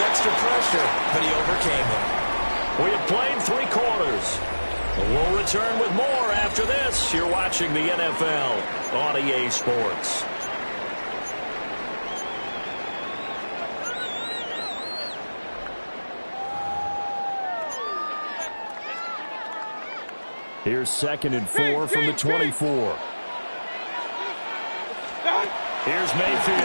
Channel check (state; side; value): inverted; both; correlation -1.00